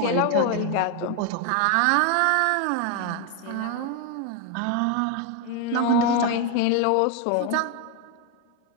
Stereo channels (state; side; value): different; both; correlation 0.01